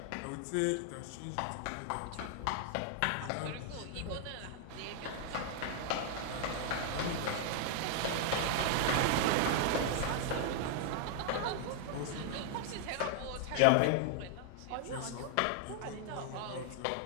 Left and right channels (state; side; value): different; both; correlation 0.00